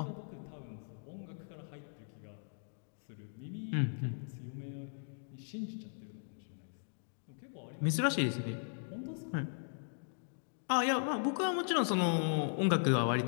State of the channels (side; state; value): right; silent; digital silence